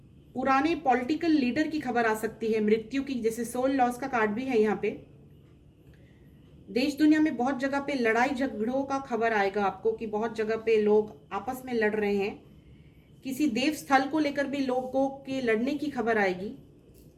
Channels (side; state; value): both; identical; correlation 1.00